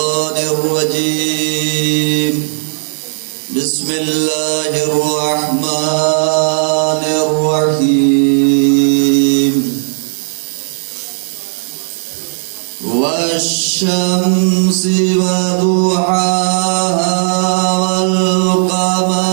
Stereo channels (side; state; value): left; silent; digital silence